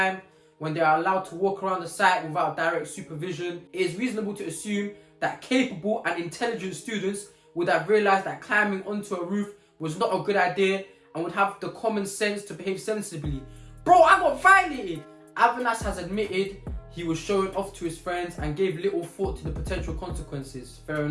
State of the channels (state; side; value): identical; both; correlation 1.00